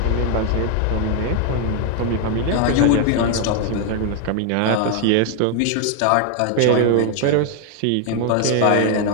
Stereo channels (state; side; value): different; both; correlation 0.00